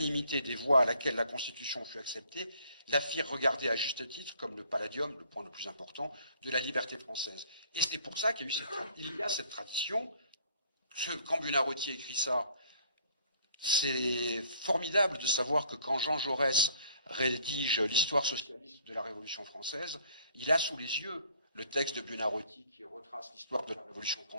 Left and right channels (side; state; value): both; inverted; correlation -0.58